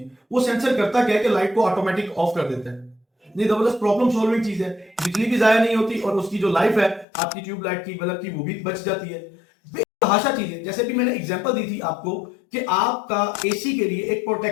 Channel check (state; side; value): drops out; right; at 7.1 s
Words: वो सेंसर करता क्या है कि लाइट को ऑटोमेटिक ऑफ कर देता है। नहीं, जबरदस्त प्रॉब्लम सॉल्विंग चीज है। बिजली भी जाया नहीं होती और उसकी जो लाइफ है आपकी ट्यूबलाइट की, बल्ब की, वो भी बच जाती है। बेतहाशा चीज है। जैसे भी मैंने एग्जांपल दी थी आपको कि आपका एसी के लिए एक